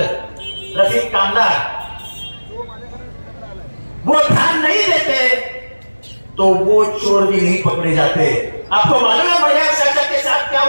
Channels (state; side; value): inverted; both; correlation -1.00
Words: रफीक कामदार, वो ध्यान नहीं देते तो वो चोर भी नहीं पकड़े जाते। आपको मालूम है बढ़िया चाचा के साथ क्या